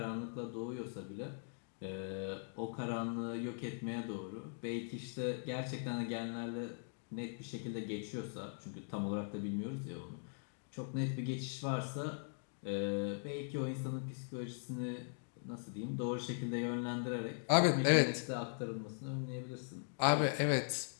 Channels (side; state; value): right; silent; digital silence